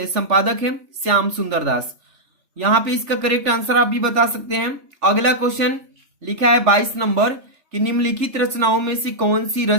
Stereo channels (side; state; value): left; late; 3.4 ms